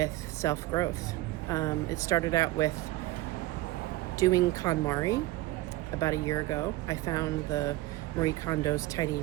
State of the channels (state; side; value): quieter; left; 17.5 dB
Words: self-growth. It started out with doing KonMari about a year ago. I found the Marie Kondo's